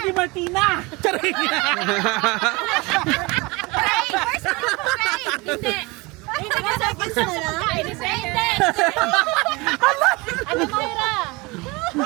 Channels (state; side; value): quieter; left; 25.2 dB